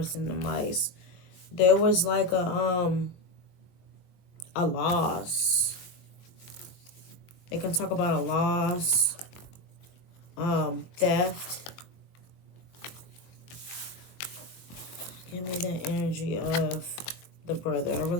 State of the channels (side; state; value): right; late; 22 ms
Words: and the mice. There was like a loss. They can talk about a loss, theft. Give me the energy of the brother. I